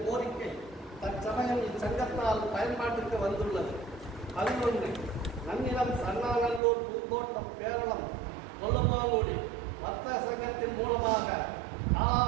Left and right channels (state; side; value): drops out; left; at 6.6 s